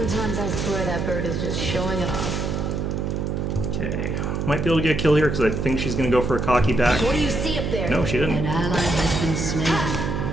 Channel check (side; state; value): right; noise; hum, 1 dB below the sound